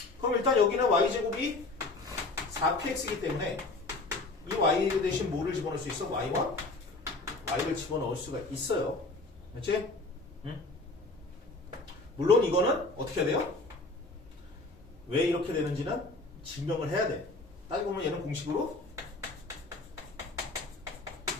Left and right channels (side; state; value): right; quieter; 3.2 dB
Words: 그럼 일단 여기는 y제곱이 4px이기 때문에 이 y 대신 뭐를 집어넣을 수 있어? y1? y를 집어넣을 수가 있어요. 그렇지? 응? 물론 이거는 어떻게 해야 돼요? 왜 이렇게 되는지는 증명을 해야 돼. 따지고 보면 얘는 공식으로